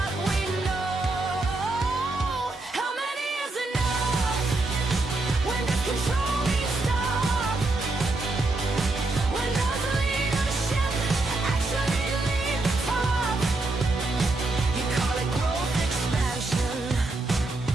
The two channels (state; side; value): quieter; left; 3.1 dB